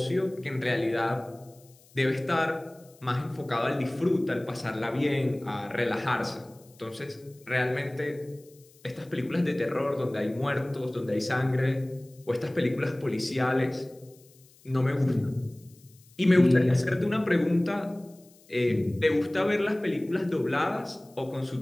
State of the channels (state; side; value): noise; left; hiss, 28 dB below the sound